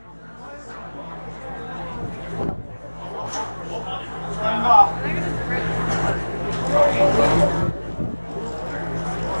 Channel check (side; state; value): both; inverted; correlation -1.00